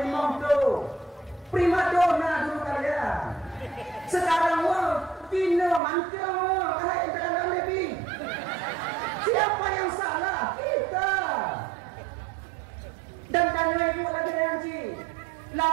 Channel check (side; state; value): left; drops out; at 5.8 s